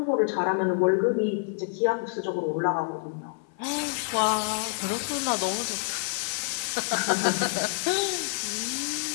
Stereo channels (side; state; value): right; silent; 56 dB below the other